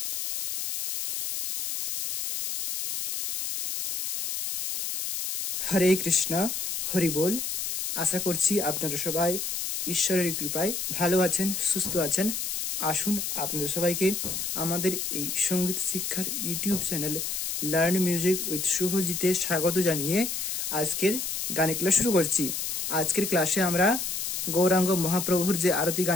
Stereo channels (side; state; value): left; noise; hiss, 3 dB below the sound